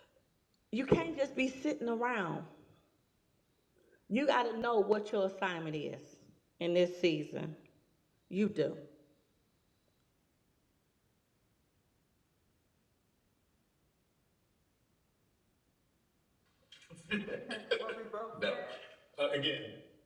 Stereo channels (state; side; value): identical; both; correlation 1.00